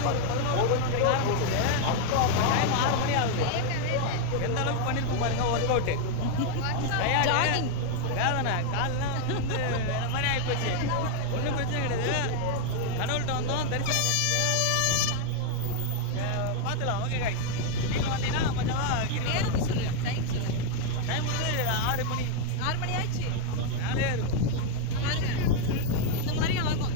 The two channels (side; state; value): both; different; correlation 0.00